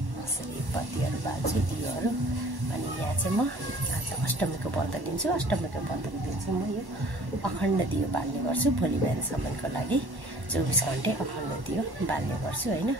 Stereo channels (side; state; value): left; late; 1.1 ms